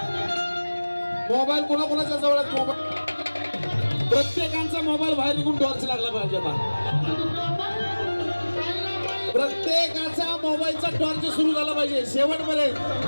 मोबाईल कोणाकोणाच्या जवळ आहेत? मोबाईल प्रत्येकांचा मोबाईल बाहेर निघून टॉर्च लागला पाहिजे. आता प्रत्येकाचा मोबाईलचा टॉर्च सुरू झाला पाहिजे.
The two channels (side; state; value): both; inverted; correlation -1.00